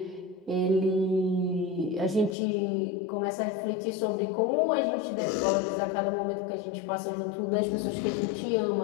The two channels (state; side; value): drops out; right; at 2.4 s